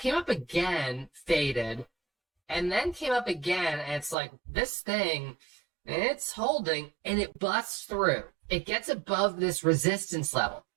up again, faded, and then came up again, and it's like this thing, it's holding, and it busts through. It gets above this resistance level.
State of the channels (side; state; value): left; drops out; at 4.2 s